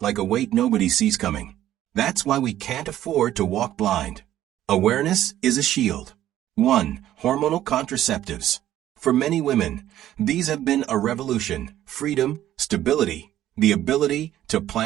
like a weight nobody sees coming. That's why we can't afford to walk blind. Awareness is a shield. 1. Hormonal contraceptives. For many women, these have been a revolution, freedom, stability, the ability to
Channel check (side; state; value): left; quieter; 12.7 dB